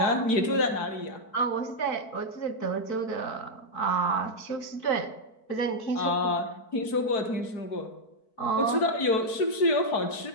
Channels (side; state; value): right; late; 4.6 ms